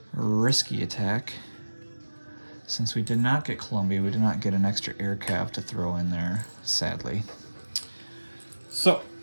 risky attack. Since we did not get Columbia, we did not get an extra air cav to throw in there, sadly. So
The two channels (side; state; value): both; inverted; correlation -1.00